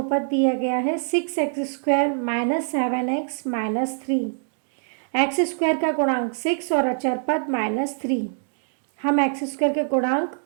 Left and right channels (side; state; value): left; silent; digital silence